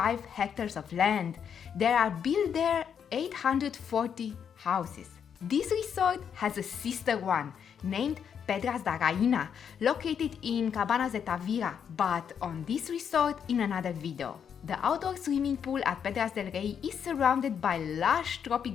hectares of land. There are built there 840 houses. This resort has a sister one named Pedras da Rainha, located in Cabanas de Tavira, but on this resort in another video. The outdoor swimming pool at Pedras del Rei is surrounded by lush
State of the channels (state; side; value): quieter; right; 7.7 dB